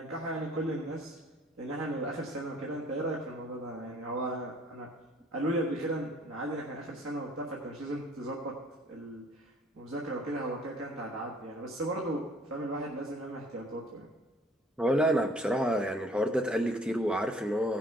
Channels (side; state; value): both; normal; correlation 0.56